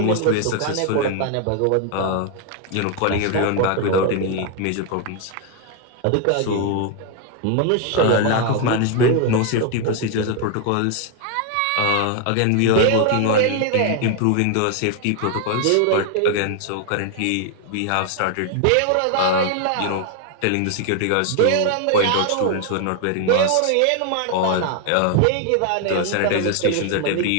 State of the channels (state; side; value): different; both; correlation 0.01